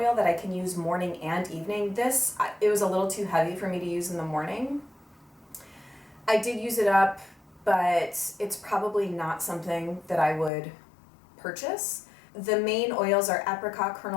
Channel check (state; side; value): drops out; right; at 10.5 s